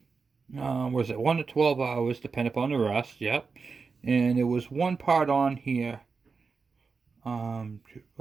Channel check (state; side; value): quieter; left; 4.9 dB